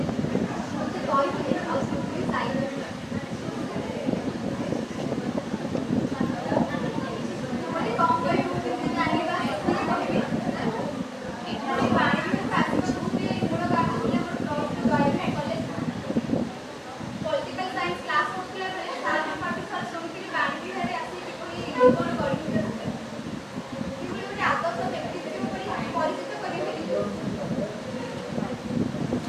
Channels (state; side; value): identical; both; correlation 1.00